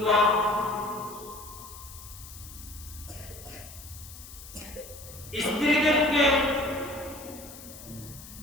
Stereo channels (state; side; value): noise; left; hiss, 16 dB below the sound